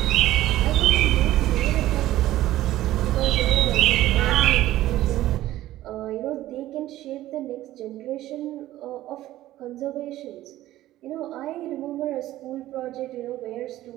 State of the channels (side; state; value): left; quieter; 14.9 dB